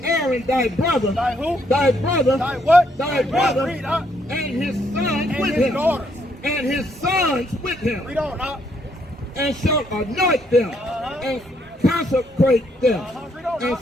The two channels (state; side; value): normal; both; correlation 0.72